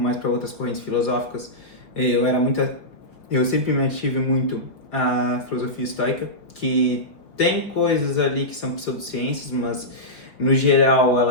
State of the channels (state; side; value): late; right; 4.9 ms